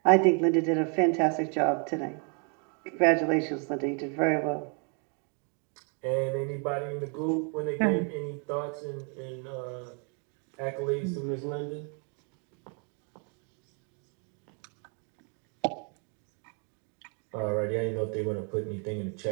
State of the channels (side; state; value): left; quieter; 38.4 dB